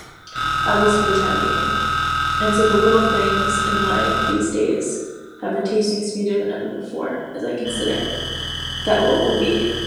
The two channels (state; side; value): identical; both; correlation 1.00